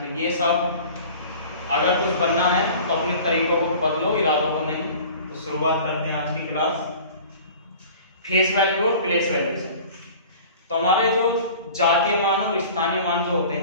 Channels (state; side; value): inverted; both; correlation -0.43